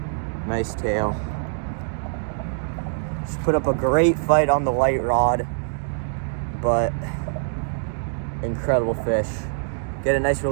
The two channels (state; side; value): silent; left; digital silence